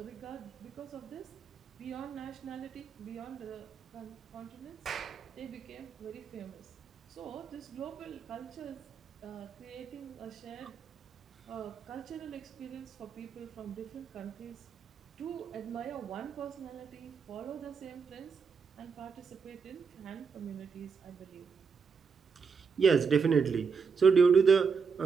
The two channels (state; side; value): quieter; left; 5.7 dB